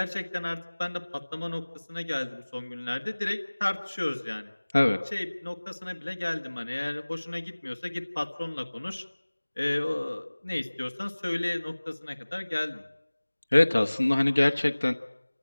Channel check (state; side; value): inverted; both; correlation -1.00